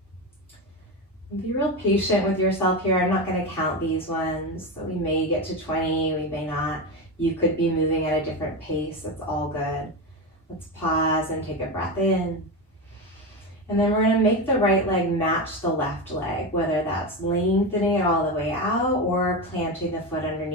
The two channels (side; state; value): both; normal; correlation 0.17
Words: And be real patient with yourself here. I'm not going to count these ones. So we may get to 20, we may not. You could be moving at a different pace. It's all good. Let's pause and take a breath in. And then we're going to make the right leg match the left leg, whether that's lengthening it all the way out or planting the foot